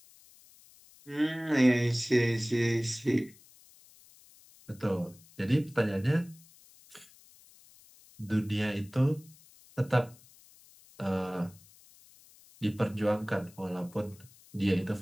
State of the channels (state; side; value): noise; left; hiss, 25 dB below the sound